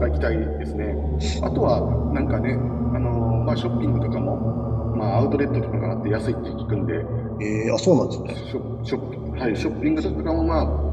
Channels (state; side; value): identical; both; correlation 1.00